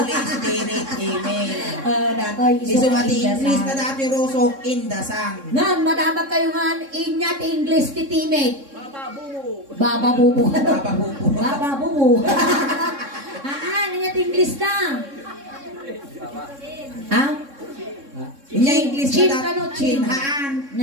Spirit. Amen. Datoy, Iso nga ti indasan. English na dati rusok, in the Son. Ngan, madamag kayo nga, inya ti English ti teammate. Baba bubu. Baba bubu. Baba bubu. Inya ti English na. Ha? Inya English Chin na ka no, dati. chin. Haan.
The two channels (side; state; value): left; late; 3.6 ms